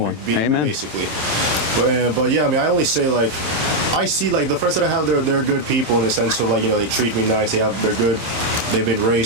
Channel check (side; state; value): left; late; 27 ms